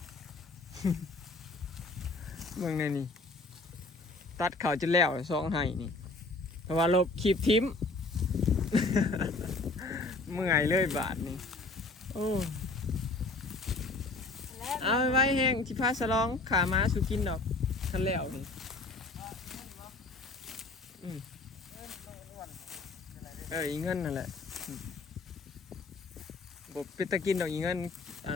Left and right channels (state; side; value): quieter; right; 3.4 dB